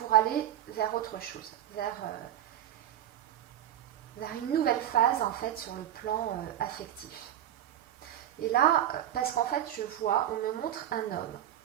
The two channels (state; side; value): quieter; left; 11.5 dB